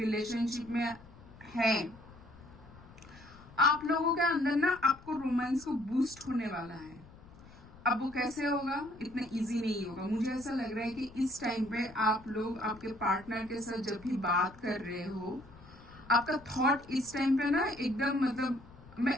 में है, आप लोगों के अंदर ना आपको रोमांस को बूस्ट होने वाला है। अब वो कैसे होगा, इतना इजी नहीं होगा। मुझे ऐसा लग रहा है कि इस टाइम पे आप लोग आपके पार्टनर के साथ जब भी बात कर रहे हो, आपका थॉट इस टाइम पे ना एकदम मतलब मैं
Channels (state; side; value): noise; left; rumble, 21 dB below the sound